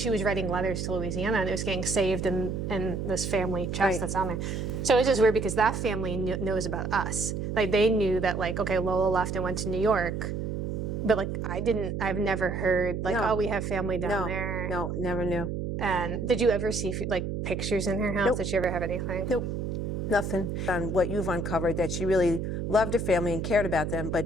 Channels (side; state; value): right; noise; hum, 3 dB below the sound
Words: was writing letters to Louisiana and it was getting saved in this family chest that's on there. So it's just weird because that family knows about us. Like they knew that like, okay, Lola left and went to New York. But like I've never heard like, oh, we have family down there. No, never knew. And did you ever see like pictures in her house? Nope. Did you ever have anything? Nope, nothing. On what you've uncovered, that she really loved her family and cared about them,